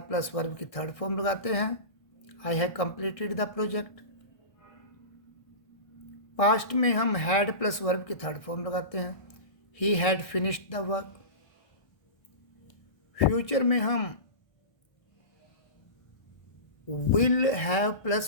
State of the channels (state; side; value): late; right; 1.6 ms